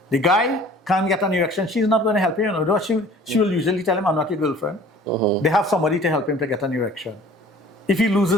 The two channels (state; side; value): normal; both; correlation 0.49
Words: The guy can't get an erection. She's not going to help him. She will usually tell him, I'm not your girlfriend. They have somebody to help him to get an erection. If he